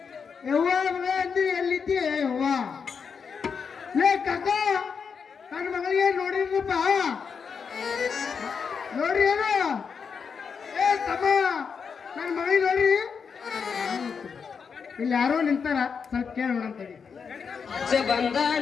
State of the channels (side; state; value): right; quieter; 6.1 dB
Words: ಯವ್ವ ಮಗಳ ಅಂದಿ ಎಲ್ಲಿದ್ದಿ ಯವ್ವ ಲೇ ಕಾಕ ನನ್ನ ಮಗಳಿಗೆ ನೋಡಿದ್ರಪ್ಪ ನೋಡ್ರಿ ಏನು ಏ ತಮ್ಮ ನನ್ನ ಮಗಳಿಗೆ ನೋಡ್ರಿ ಇಲ್ಲಿ ಯಾರೋ ನಿಂತಾರ ಸ್ವಲ್ಪ ಕೇಳೋಣ ಅಂತೇಳಿ ಅಜ್ಜ